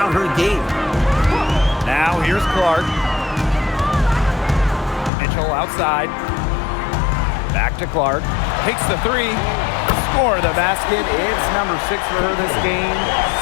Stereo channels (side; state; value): right; drops out; at 5.1 s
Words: her game. Now here's Clark. Mitchell outside. Back to Clark. Takes the three. Score the basket. It's number 6 for her this game.